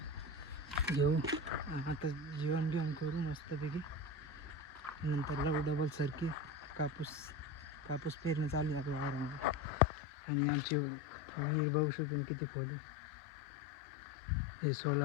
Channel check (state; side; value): drops out; right; at 9.6 s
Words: घेऊ. आता जेवण करू मस्तपैकी. नंतर लावू डबल सरकी. कापूस पेरणी चालू आहे आपल्या वावरामध्ये. आणि आमची विहीर बघू शकतो किती खोली. हे